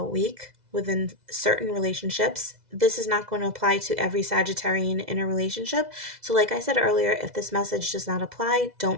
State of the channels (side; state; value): left; late; 2.0 ms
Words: week within certain relationships. This is not going to apply to every Sagittarian in a relationship. So like I said earlier, if this message does not apply,